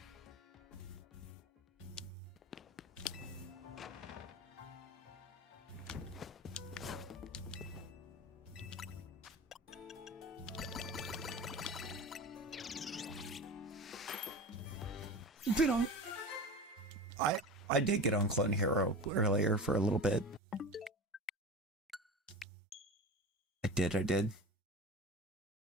Been on. I did get on Clone Hero earlier for a little bit. I did.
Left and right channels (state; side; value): normal; both; correlation 0.31